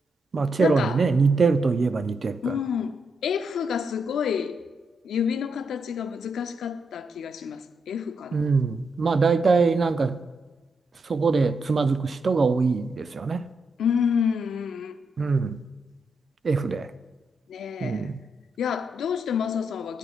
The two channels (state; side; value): normal; both; correlation 0.81